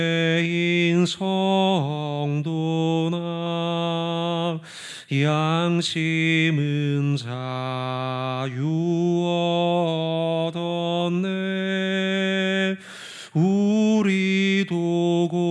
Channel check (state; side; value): identical; both; correlation 1.00